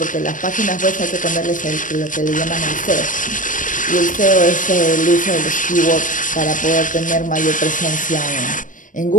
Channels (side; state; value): right; late; 0.38 ms